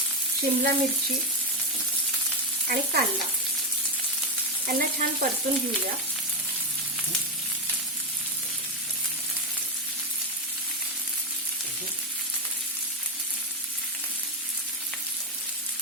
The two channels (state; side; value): normal; both; correlation 0.09